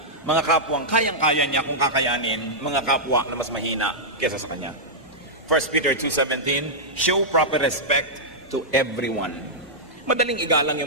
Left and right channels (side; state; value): both; normal; correlation -0.09